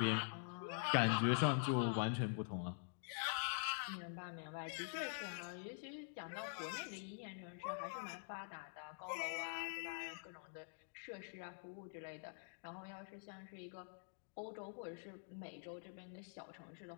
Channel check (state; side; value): silent; right; digital silence